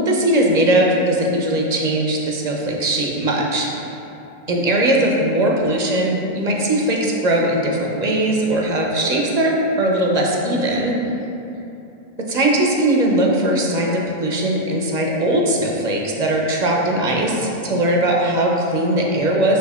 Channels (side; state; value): right; late; 1.9 ms